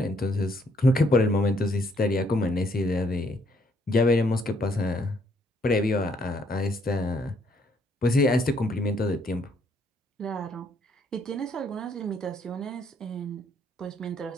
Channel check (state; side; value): normal; both; correlation 0.68